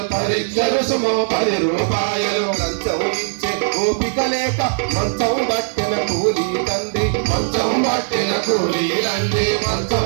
లంచం ఇచ్చే ఓపిక లేక మంచం పట్టిన కూలీ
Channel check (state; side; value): silent; left; digital silence